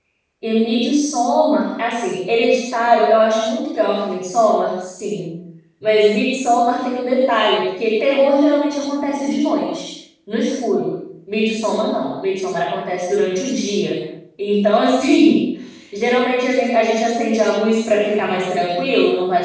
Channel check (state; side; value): identical; both; correlation 1.00